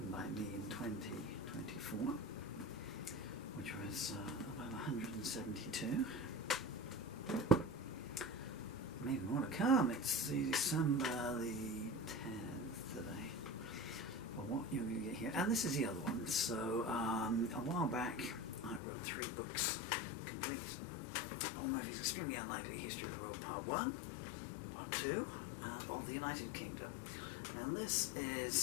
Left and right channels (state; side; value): drops out; right; at 18.8 s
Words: by me in 2024, which was about 172. Maybe more to come. It's December the 10th today. Well, what you're going to get here, and this is the other one. So a while back, I wrote 3 books, complete. All Murphy's Extremely Unlikely History of the World, Part 1, Part 2, and of the United Kingdom. And this